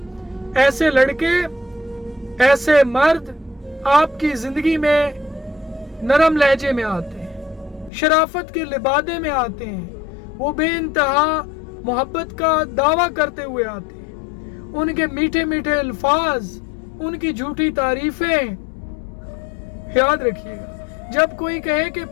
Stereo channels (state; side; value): drops out; right; at 7.9 s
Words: ایسے لڑکے، ایسے مرد آپ کی زندگی میں نرم لہجے میں آتے ہیں، شرافت کے لبادے میں آتے ہیں، وہ بے انتہا محبت کا دعویٰ کرتے ہوئے آتے ہیں، ان کے میٹھے میٹھے الفاظ، ان کی جھوٹی تعریفیں۔ یاد رکھیے گا، جب کوئی کہے کہ